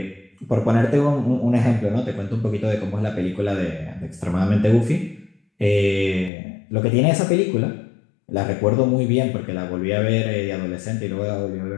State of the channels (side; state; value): right; drops out; at 6.3 s